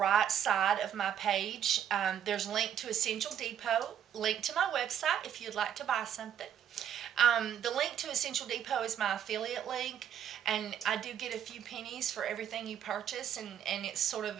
side of my page. There's a link to Essential Depot, link to my website if you'd like to buy something. The link to Essential Depot is my affiliate link, and I do get a few pennies for everything you purchase, and it's sort of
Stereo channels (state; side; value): quieter; left; 9.4 dB